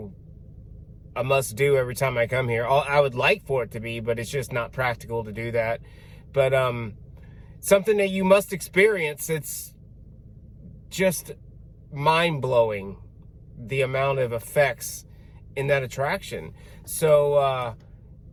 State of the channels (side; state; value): both; identical; correlation 1.00